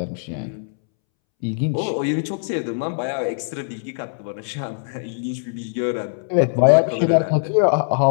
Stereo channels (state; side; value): silent; right; 64 dB below the other